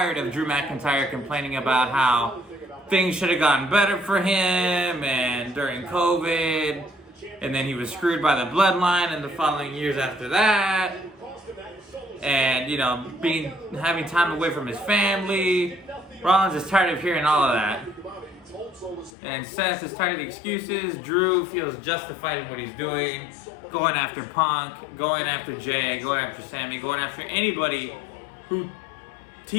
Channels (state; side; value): drops out; right; at 19.1 s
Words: of Drew McIntyre complaining about how things should have gotten better for him and during COVID. And then he was screwed by the bloodline in the following years after that. And, you know, having time away from his family. Rollins is tired of hearing all of that. And Seth is tired of the excuses. Drew feels justified in what he's doing. Going after Punk, going after Jay, going after Sammy, going after anybody who